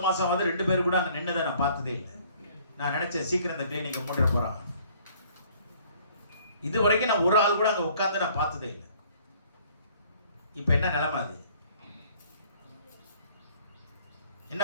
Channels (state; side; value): inverted; both; correlation -0.58